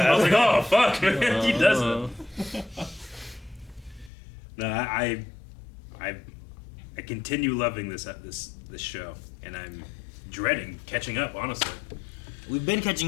was like, oh fuck, man, he doesn't. Uh, No, I continue loving this show, and I'm dreading catching up. Honestly, We've been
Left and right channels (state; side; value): drops out; right; at 4.1 s